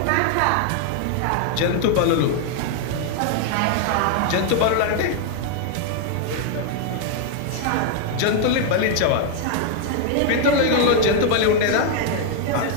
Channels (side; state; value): both; different; correlation 0.00